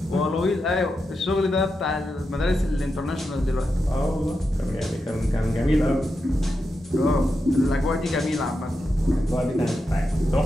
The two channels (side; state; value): both; normal; correlation 0.88